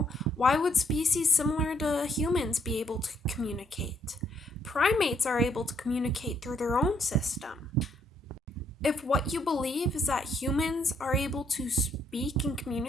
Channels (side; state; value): both; normal; correlation 0.71